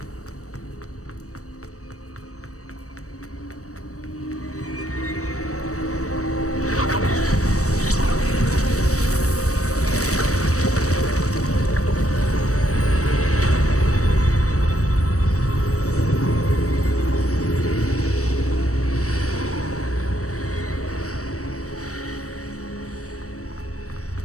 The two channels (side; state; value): right; late; 0.65 ms